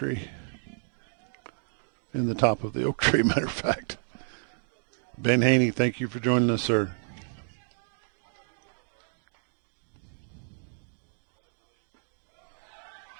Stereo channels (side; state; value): left; silent; digital silence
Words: In the top of the oak tree, matter of fact. Ben Haney, thank you for joining us, sir.